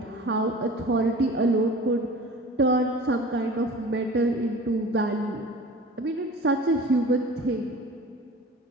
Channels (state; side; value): normal; both; correlation 0.41